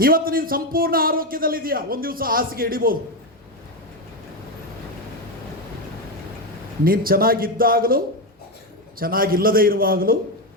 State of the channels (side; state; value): both; normal; correlation 0.10